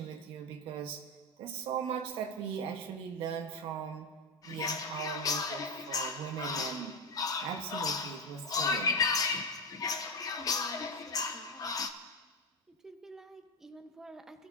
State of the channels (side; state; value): both; normal; correlation 0.12